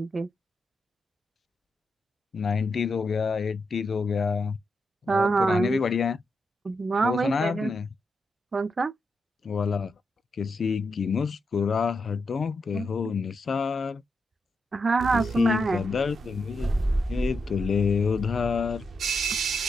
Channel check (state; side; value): normal; both; correlation 0.84